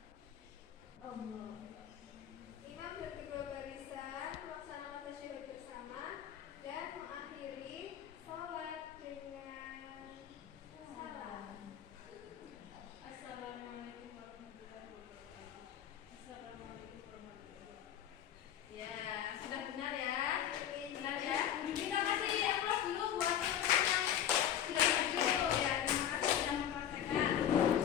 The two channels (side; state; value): right; quieter; 10.2 dB